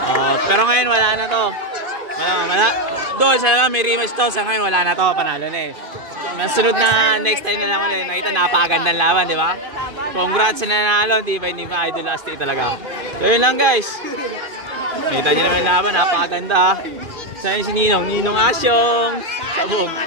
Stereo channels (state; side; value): late; left; 2.5 ms